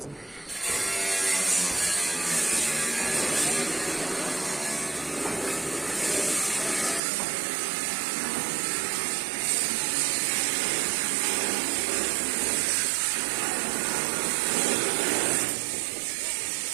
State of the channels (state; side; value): drops out; left; at 7.0 s